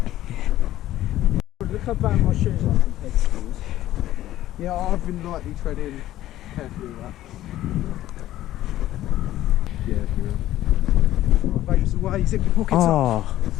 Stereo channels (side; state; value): right; quieter; 14.1 dB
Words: Look how bad my shoes are compared to yours. Yeah, I've been lightly treading carefully with that. Yeah, if you will. Right, babes away, zip your pockets up. Oh,